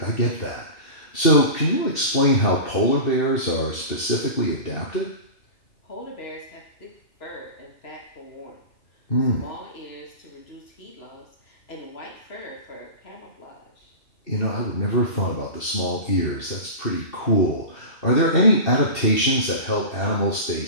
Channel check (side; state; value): right; late; 2.7 ms